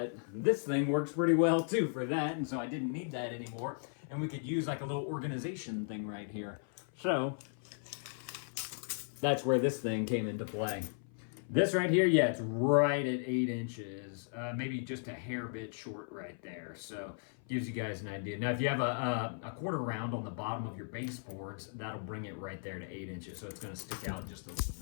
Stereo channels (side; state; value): right; silent; 54 dB below the other